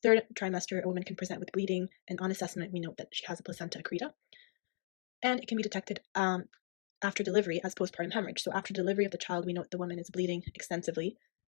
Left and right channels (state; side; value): silent; right; 53 dB below the other